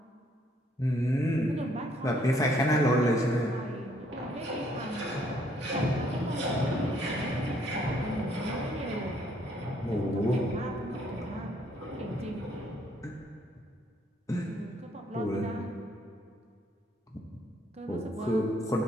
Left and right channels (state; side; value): normal; both; correlation 0.67